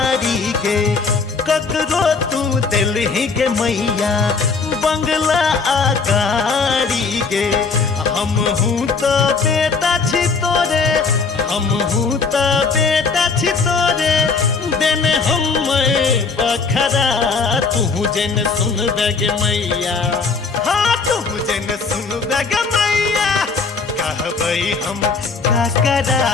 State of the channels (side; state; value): right; quieter; 4.7 dB